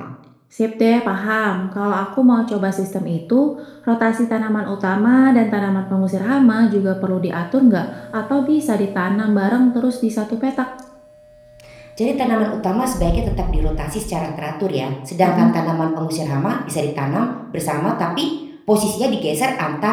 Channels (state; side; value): identical; both; correlation 1.00